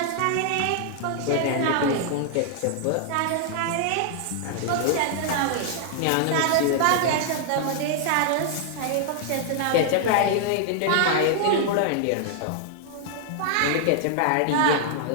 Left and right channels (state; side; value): different; both; correlation -0.01